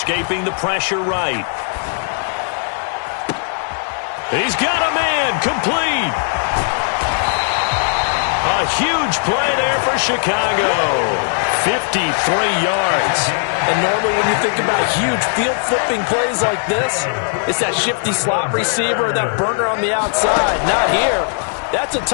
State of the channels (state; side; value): silent; right; 65 dB below the other